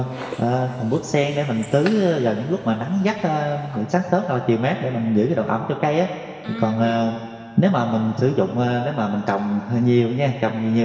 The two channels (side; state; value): both; identical; correlation 1.00